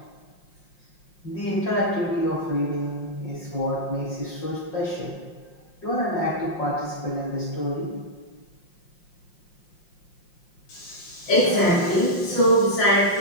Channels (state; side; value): late; right; 5.6 ms